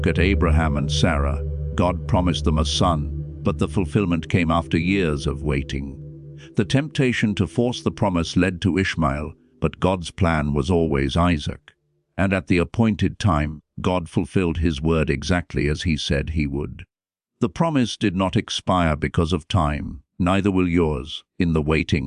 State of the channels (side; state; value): both; identical; correlation 1.00